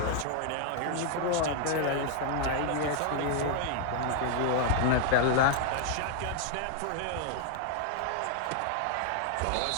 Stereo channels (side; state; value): both; different; correlation 0.00